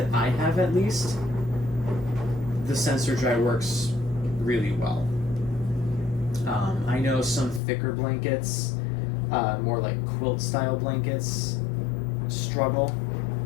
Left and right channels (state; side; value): drops out; right; at 7.6 s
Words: I have, at least, the sensor dry works really well. I know some thicker blankets, more like quilt style blankets, struggle